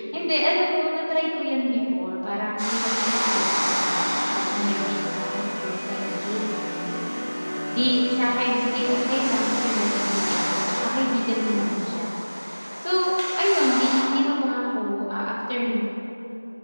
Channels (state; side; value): inverted; both; correlation -1.00